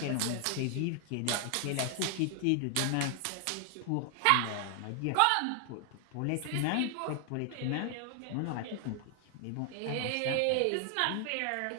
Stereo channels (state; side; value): different; both; correlation 0.00